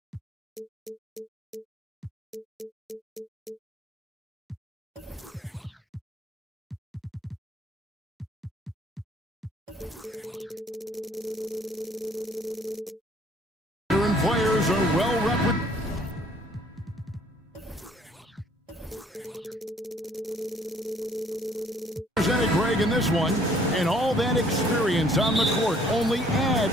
Players are well represented, Greg, in this one, and all that experience on the court only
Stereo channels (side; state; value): both; normal; correlation 0.60